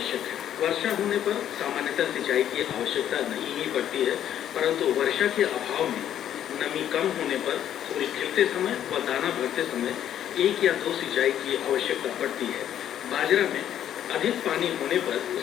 है। वर्षा होने पर सामान्यतः सिंचाई की आवश्यकता नहीं ही पड़ती है, परंतु वर्षा के अभाव में नमी कम होने पर फूल खिलते समय व दाना भरते समय एक या दो सिंचाई की आवश्यकता पड़ती है। बाजरा में अधिक पानी होने पर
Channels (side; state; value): right; quieter; 10.6 dB